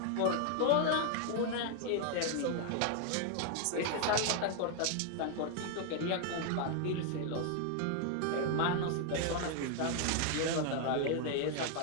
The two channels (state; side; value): different; both; correlation 0.00